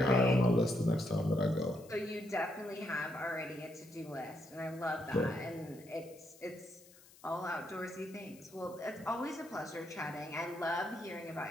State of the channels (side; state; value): left; noise; hiss, 23 dB below the sound